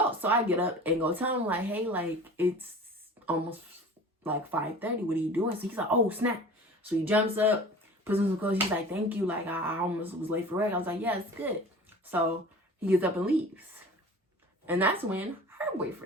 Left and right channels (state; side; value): normal; both; correlation 0.40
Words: So I get up and go tell him, like, hey, like, it's almost like 5:30. What are you doing? So he's like, oh, snap. So he jumps up, puts on some clothes. He's like, thank you. Like, I almost was late for work. I was like, yeah, it's good. So he gets up and leaves. And that's when her